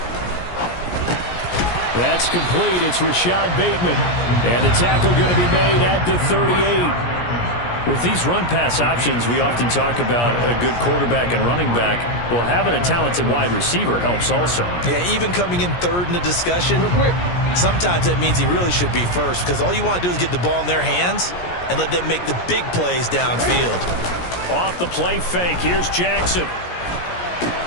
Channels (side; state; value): right; late; 17 ms